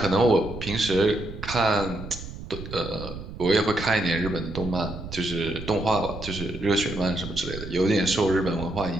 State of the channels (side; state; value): right; noise; rumble, 11 dB below the sound